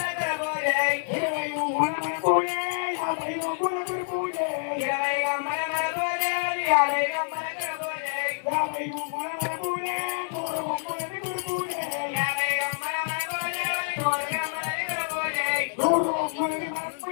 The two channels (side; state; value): right; silent; digital silence